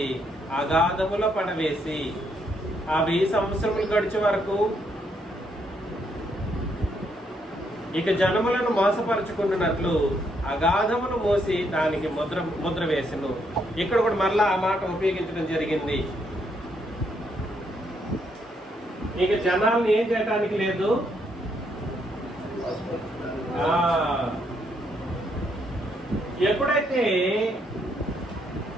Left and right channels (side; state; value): both; normal; correlation 0.74